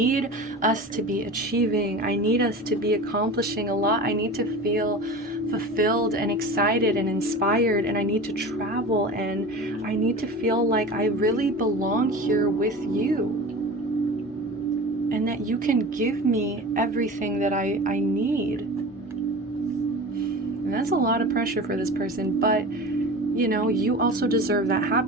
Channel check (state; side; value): normal; both; correlation 0.34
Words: us to be achieving. I need us to be accomplishing a lot. I need to feel fulfilled and excited and inspired, and I need to travel, and I need to feel like I really belong here with you, and that you can give me everything that I need. And that's a lot of pressure for this person, but you also deserve that